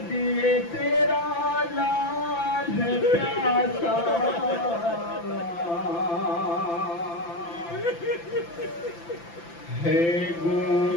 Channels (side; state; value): right; late; 5.9 ms